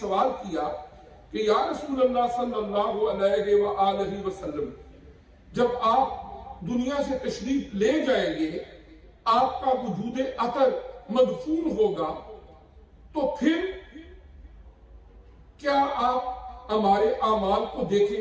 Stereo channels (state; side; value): identical; both; correlation 1.00